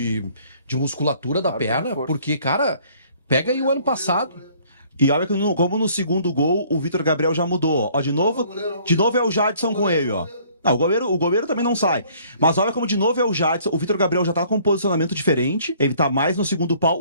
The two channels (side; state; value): both; inverted; correlation -0.58